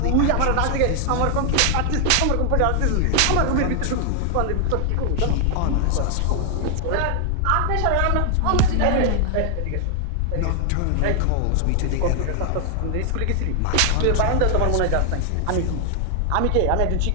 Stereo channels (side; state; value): both; different; correlation 0.00